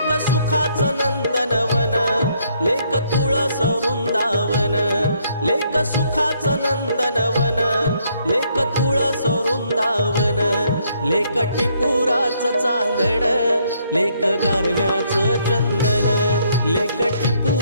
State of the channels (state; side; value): inverted; both; correlation -0.70